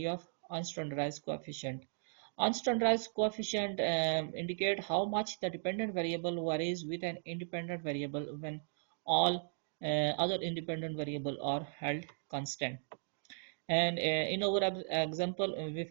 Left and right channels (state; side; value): silent; left; digital silence